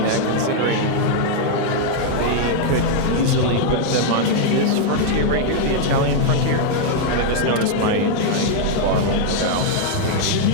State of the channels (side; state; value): both; different; correlation 0.00